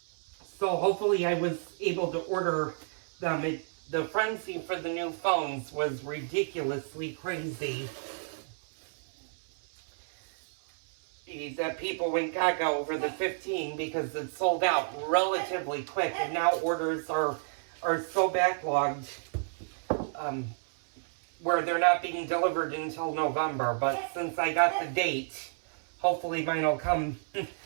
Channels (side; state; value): left; silent; 57 dB below the other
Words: So hopefully I was able to order them. The frenzy for the new phones was ridiculously crazy. That people went gaga over the 15 because it sold out relatively quick, and now orders are so backlogged where they're not being delivered until November. But since I got the date, hopefully mine will come